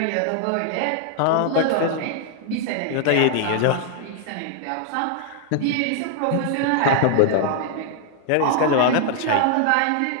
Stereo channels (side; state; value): both; different; correlation 0.00